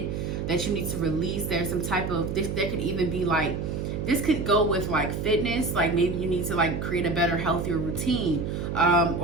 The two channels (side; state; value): right; noise; hum, 3 dB below the sound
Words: that you need to release. There's some type of this. There could even be like, this could go with like fitness. Like, maybe you need to like create a better, healthier routine,